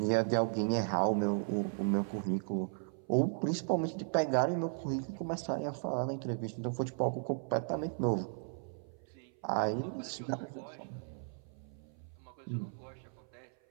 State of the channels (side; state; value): left; silent; 54 dB below the other